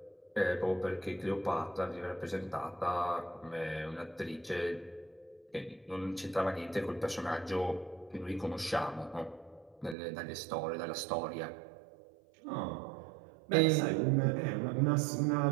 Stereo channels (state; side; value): drops out; left; at 10.0 s